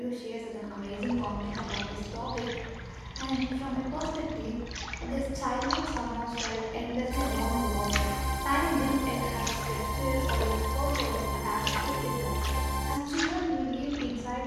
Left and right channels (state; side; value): identical; both; correlation 1.00